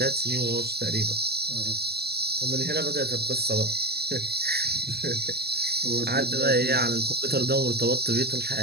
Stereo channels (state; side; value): late; left; 0.47 ms